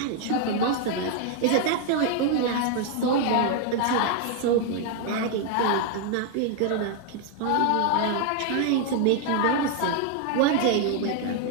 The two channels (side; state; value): both; different; correlation 0.00